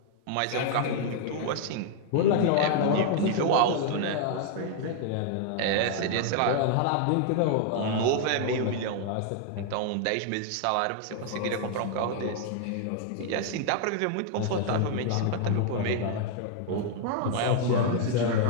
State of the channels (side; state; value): both; different; correlation 0.00